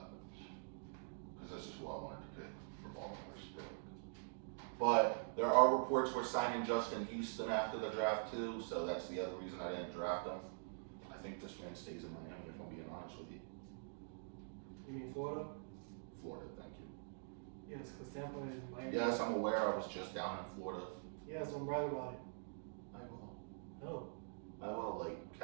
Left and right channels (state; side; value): silent; left; digital silence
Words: Because this is who I wanted to pick for Baltimore's pick. But there are reports we're signing Justin Houston after the draft too, so that's the other reason I didn't draft him. I think this man stays in Miami, if I'm being honest with you. You mean Florida? Florida, thank you. Yes, because Tampa is Miami. Yes, I'm aware. I was just down in Florida. Yes, I'm bragging about it. I will. No. I will, like